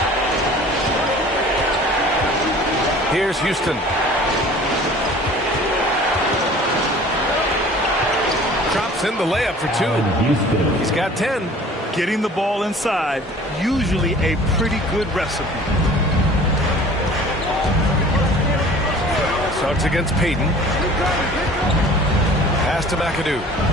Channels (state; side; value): normal; both; correlation 0.47